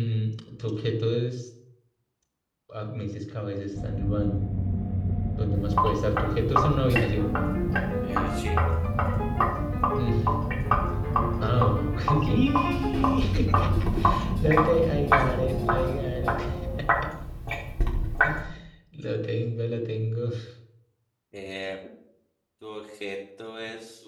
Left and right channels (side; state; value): both; identical; correlation 1.00